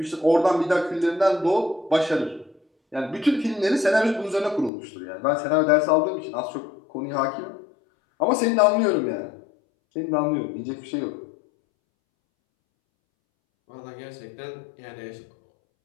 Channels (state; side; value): drops out; right; at 4.7 s